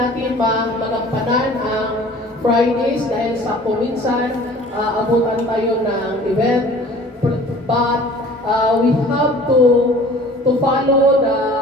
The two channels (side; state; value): both; normal; correlation 0.47